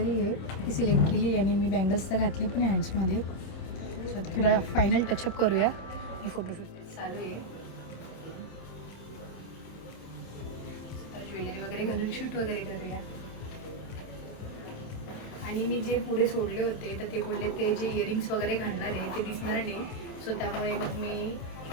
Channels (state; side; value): late; right; 26 ms